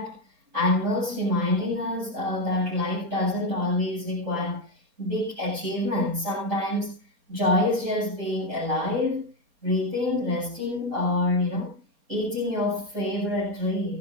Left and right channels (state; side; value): late; left; 4.3 ms